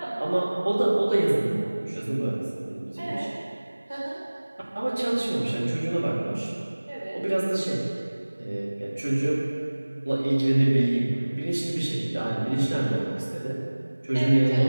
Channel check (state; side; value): inverted; both; correlation -1.00